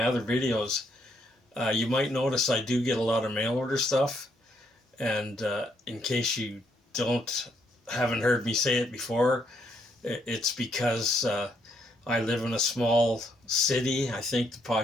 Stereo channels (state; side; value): normal; both; correlation 0.73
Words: other videos, you might notice I do get a lot of mail order stuff. And in case you haven't heard me say it before, it's because I live in a small city. I think the